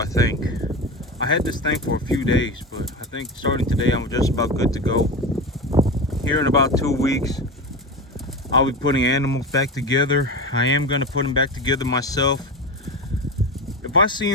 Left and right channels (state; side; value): normal; both; correlation 0.23